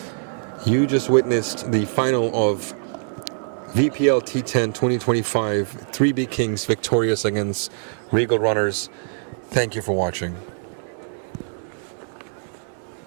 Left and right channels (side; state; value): left; silent; digital silence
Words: You just witnessed the final of VPL T10 2025, 3B Kings victorious against Regal runners. Thank you for watching.